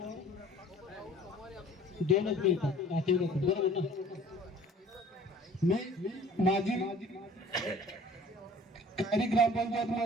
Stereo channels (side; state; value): both; normal; correlation 0.49